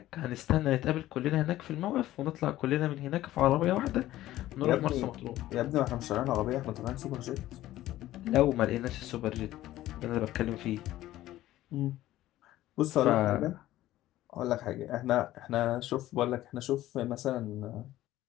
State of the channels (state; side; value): quieter; right; 14.9 dB